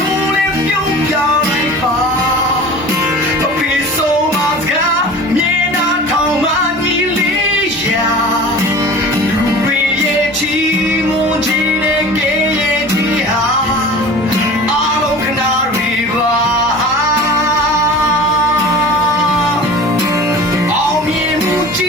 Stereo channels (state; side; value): normal; both; correlation 0.39